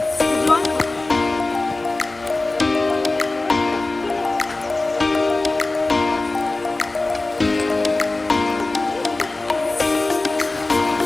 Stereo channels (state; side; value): quieter; right; 3.1 dB